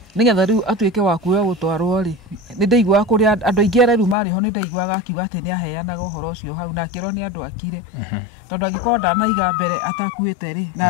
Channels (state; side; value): drops out; right; at 4.2 s